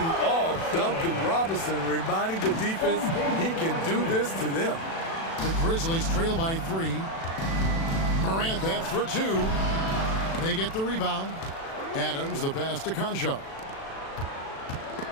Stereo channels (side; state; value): right; late; 36 ms